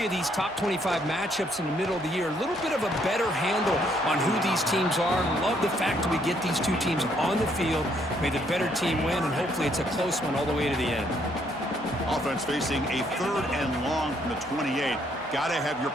of these top 25 matchups in the middle of the year. A little bit of a better handle on who these teams are. Love the fact that we get these two teams on the field. May the better team win, and hopefully it's a close one all the way to the end. Offense facing a 3rd and long from the 28. Got to have your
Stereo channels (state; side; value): normal; both; correlation 0.70